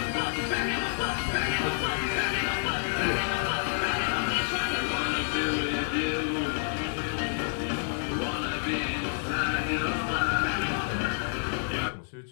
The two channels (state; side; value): silent; right; digital silence